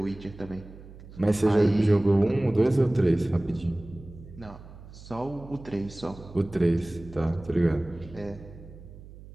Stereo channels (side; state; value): right; noise; hum, 18 dB below the sound